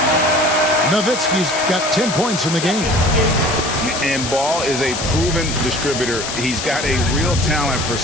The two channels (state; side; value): noise; left; hiss, 6 dB below the sound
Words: Nowitzki's got 10 points in the game. And Ball is a proven distributor. He's got a real talent for